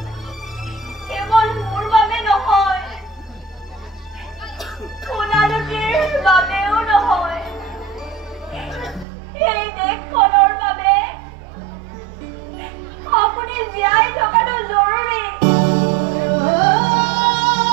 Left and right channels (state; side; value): drops out; left; at 9.1 s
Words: কেৱল মোৰ বাবে নহয়, সোণালুটিৰ বাবেও নহয়, এই দেশখনৰ বাবে আপুনি জীয়াই থকাটো জৰুৰী।